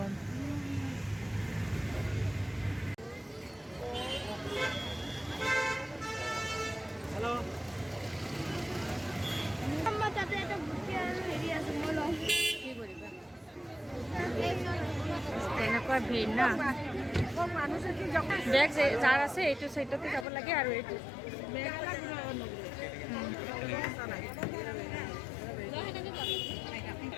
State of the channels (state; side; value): drops out; right; at 20.2 s